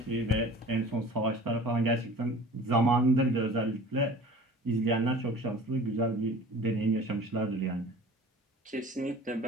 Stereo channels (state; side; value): normal; both; correlation 0.43